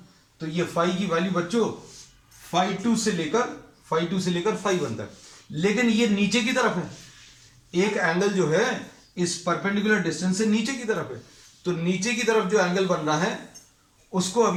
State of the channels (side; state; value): both; identical; correlation 1.00